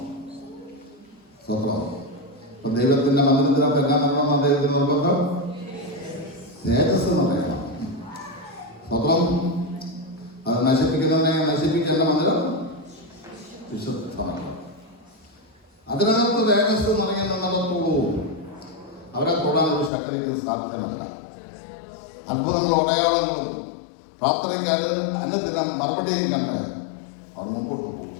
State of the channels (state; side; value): drops out; right; at 19.9 s